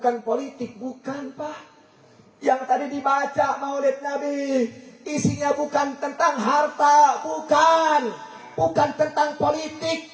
politik, bukan Pak. Yang tadi dibaca Maulid Nabi isinya bukan tentang harta, bukan tentang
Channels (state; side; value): identical; both; correlation 1.00